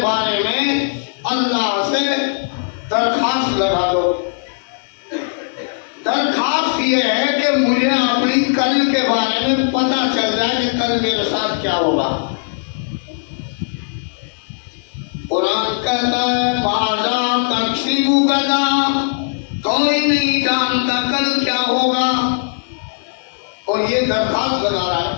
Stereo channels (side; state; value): right; silent; digital silence